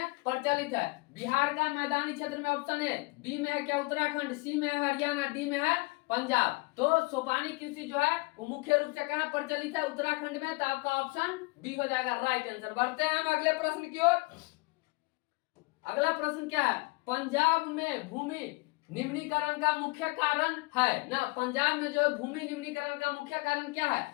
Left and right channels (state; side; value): quieter; right; 26.2 dB